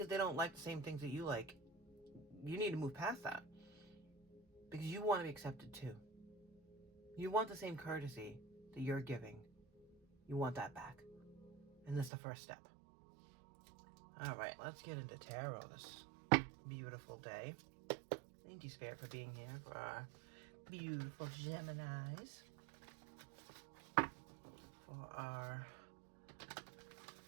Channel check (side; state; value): left; drops out; at 12.1 s